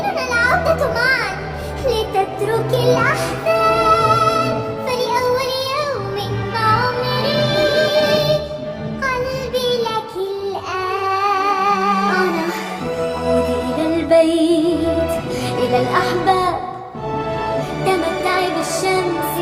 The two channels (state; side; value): identical; both; correlation 1.00